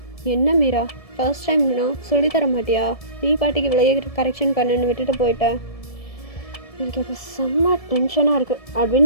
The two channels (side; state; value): right; late; 1.7 ms